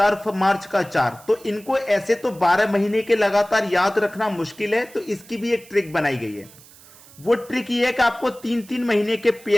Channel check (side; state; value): right; noise; hiss, 23 dB below the sound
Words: मार्च का 4, तो इनको ऐसे तो 12 महीने के लगातार याद रखना मुश्किल है, तो इसकी भी एक ट्रिक बनाई गई है। वो ट्रिक ये है कि आपको 3-3 महीने के